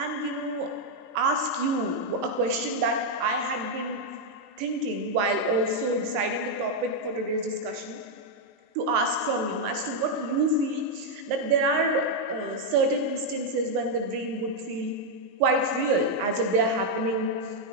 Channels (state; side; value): late; left; 19 ms